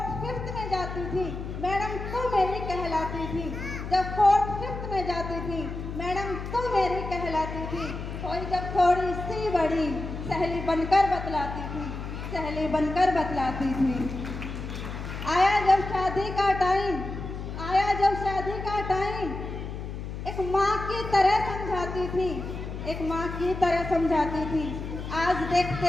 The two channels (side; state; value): left; noise; hum, 7 dB below the sound